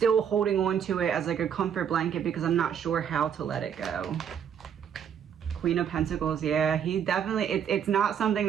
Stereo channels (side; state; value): left; quieter; 8.3 dB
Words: holding on to it as like a comfort blanket because I'm not sure how to let it go. Queen of Pentacles, yeah, he definitely, it's not something